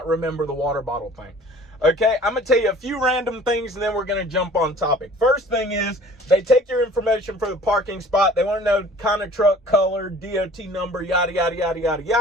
remember the water bottle thing. Okay, I'm going to tell you a few random things, and then we're going to jump on topic. First thing is, they take your information for the parking spot. They want to know kind of truck, color, DOT number, yada, yada, yada, yada,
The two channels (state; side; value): normal; both; correlation 0.49